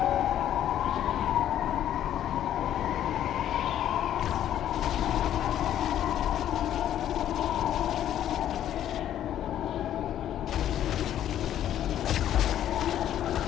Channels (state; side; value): quieter; right; 11.2 dB